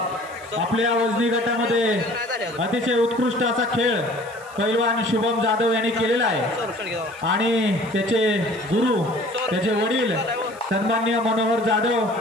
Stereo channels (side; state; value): right; noise; hiss, 23 dB below the sound